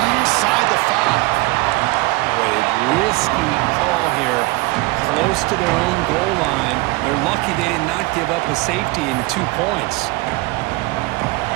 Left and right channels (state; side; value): quieter; left; 22.9 dB